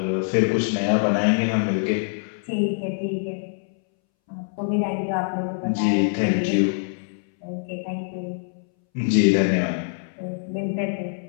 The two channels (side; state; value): right; silent; 62 dB below the other